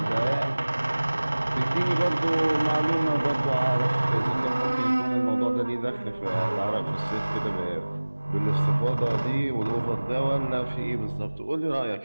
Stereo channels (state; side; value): inverted; both; correlation -1.00